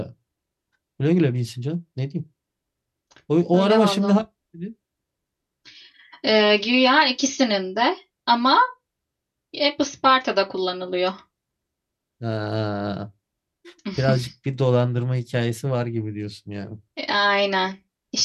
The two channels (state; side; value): identical; both; correlation 1.00